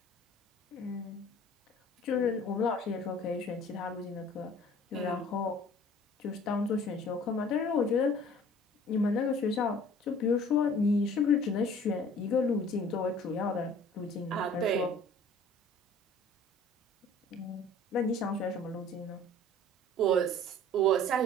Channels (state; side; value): normal; both; correlation 0.50